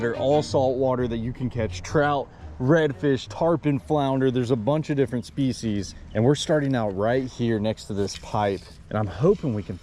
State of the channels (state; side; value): identical; both; correlation 1.00